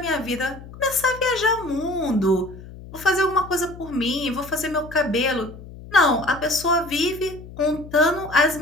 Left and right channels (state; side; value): noise; left; hum, 16 dB below the sound